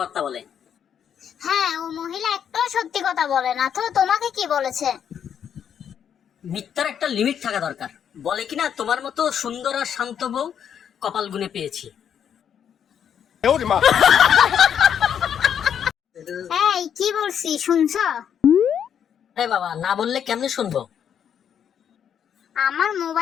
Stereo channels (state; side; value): quieter; right; 8.5 dB